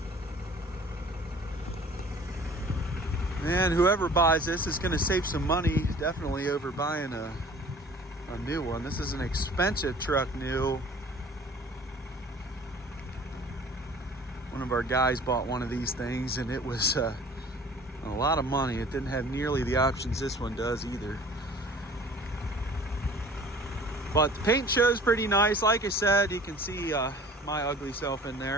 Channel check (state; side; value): normal; both; correlation 0.48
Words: And whoever buys this is going to save some money, definitely, over buying a new one. This is an expensive truck new. One of our guys bought one of these things, and it was a lot of money. It didn't have nearly the options this one does either. But the paint shows pretty nice. Like I said, you can see my ugly self in